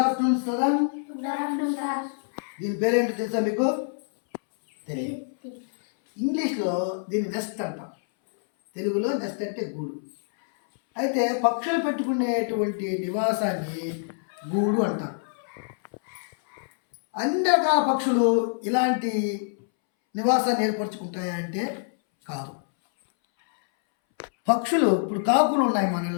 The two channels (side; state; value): right; silent; 61 dB below the other